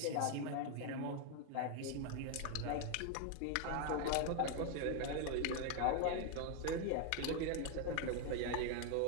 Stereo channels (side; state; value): both; different; correlation 0.01